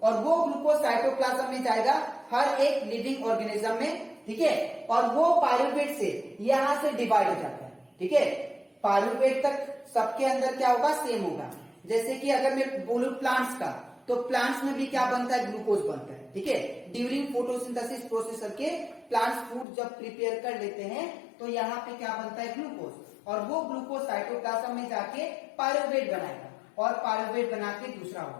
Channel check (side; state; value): right; drops out; at 19.7 s